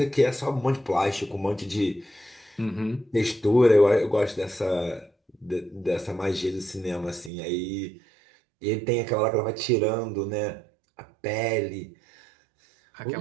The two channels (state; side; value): drops out; left; at 7.3 s